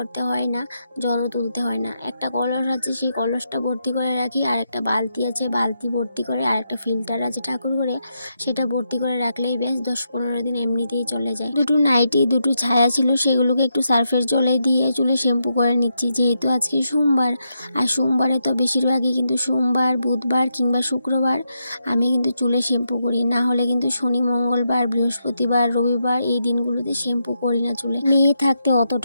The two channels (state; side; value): inverted; both; correlation -0.82